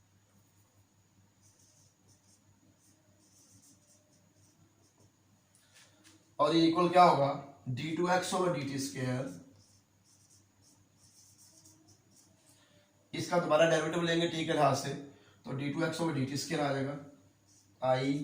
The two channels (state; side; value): identical; both; correlation 1.00